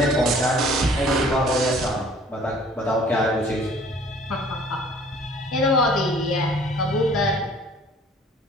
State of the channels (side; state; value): both; normal; correlation 0.53